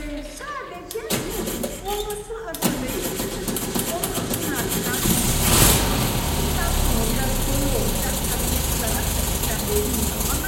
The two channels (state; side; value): identical; both; correlation 1.00